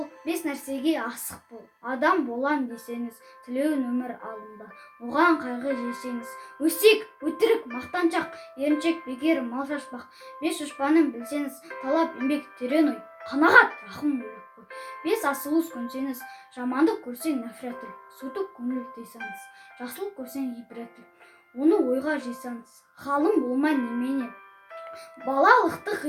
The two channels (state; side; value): identical; both; correlation 1.00